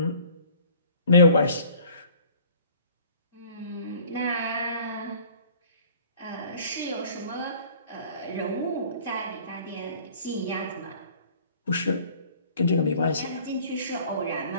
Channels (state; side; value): inverted; both; correlation -0.50